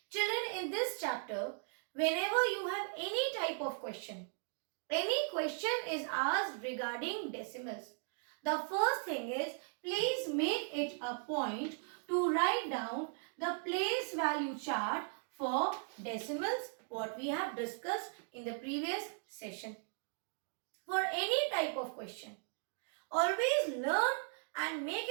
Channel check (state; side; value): silent; left; 53 dB below the other